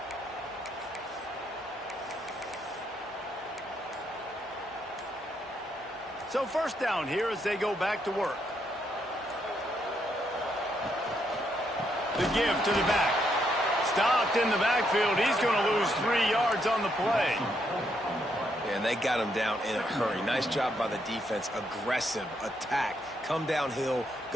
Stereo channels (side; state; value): both; normal; correlation 0.76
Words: So first down here as they go back to work. The give to the back. Stopped in the backfield. He's going to lose 3 yards on the play. Yeah, and they got him down in a hurry. Nice job by the defense. Aggressive attack. Come downhill.